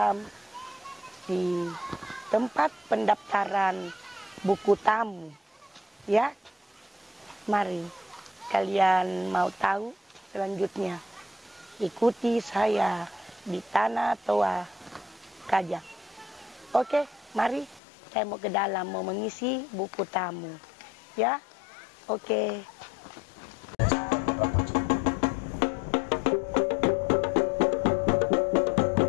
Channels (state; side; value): drops out; right; at 17.8 s